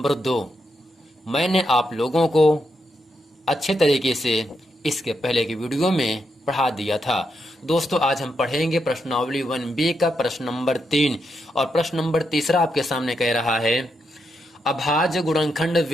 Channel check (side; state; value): both; normal; correlation 0.82